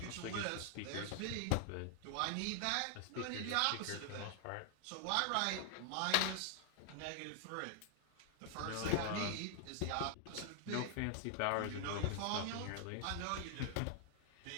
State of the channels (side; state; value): both; different; correlation 0.00